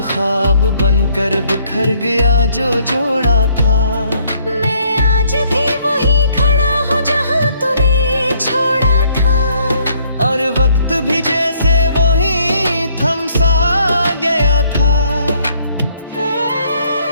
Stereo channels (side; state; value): both; inverted; correlation -0.66